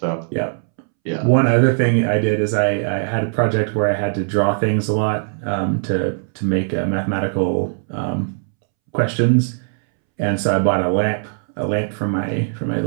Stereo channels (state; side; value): silent; left; 66 dB below the other